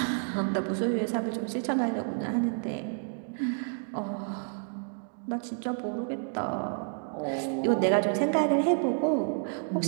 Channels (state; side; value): silent; left; 58 dB below the other